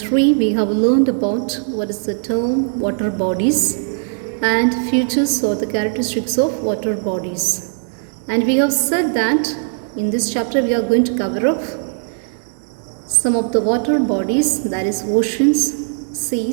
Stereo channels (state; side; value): silent; left; 67 dB below the other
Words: we have learned about what is the term water bodies and features or the characteristics of water bodies. And we have said that in this chapter we are going to cover up some of the water bodies, that is oceans,